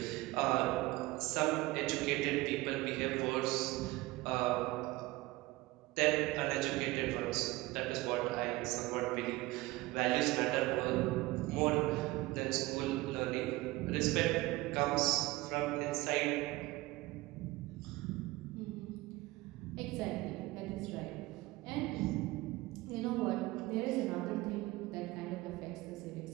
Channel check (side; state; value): left; quieter; 19.9 dB